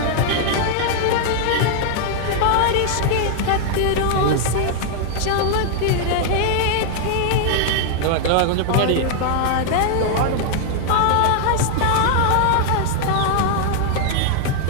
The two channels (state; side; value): different; both; correlation 0.00